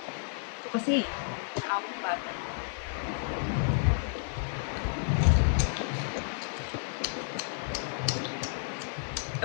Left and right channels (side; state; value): right; silent; digital silence